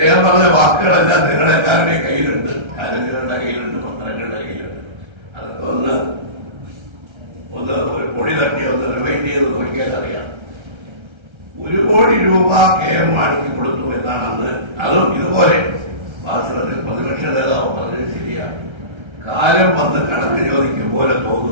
പറഞ്ഞ വാക്കുകളെല്ലാം നിങ്ങളെല്ലാവരുടെയും കയ്യിലുണ്ട്, കാരങ്ങളുടെ കയ്യിലുണ്ട്, പത്രങ്ങളുടെ കയ്യിലുണ്ട്. അതൊക്കെ ഒന്ന് ഒരു പൊടി തട്ടി ഒന്ന് റിവൈൻഡ് ചെയ്ത് നോക്കിയാൽ അറിയാം. 1 കോടി രൂപ KM മാണിക്ക് കൊടുത്തു എന്നാണ് അന്ന്. അതും ഇതുപോലെ വാസ്തവത്തിൽ പ്രതിപക്ഷ നേതാവ് പറഞ്ഞത് ശരിയാണ്. കാലം വന്ന് കണക്ക് ചോദിക്കും പോലെ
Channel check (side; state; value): left; late; 1.3 ms